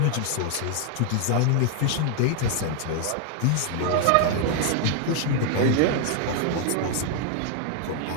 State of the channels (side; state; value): both; different; correlation 0.00